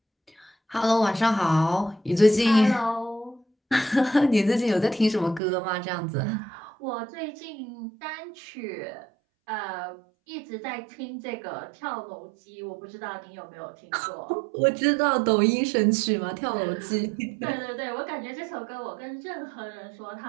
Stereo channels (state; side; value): drops out; left; at 5.4 s